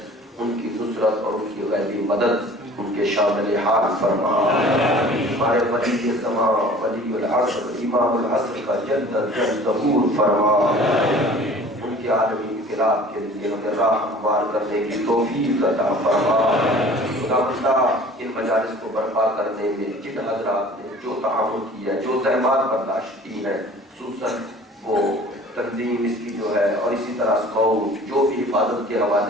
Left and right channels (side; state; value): both; normal; correlation 0.47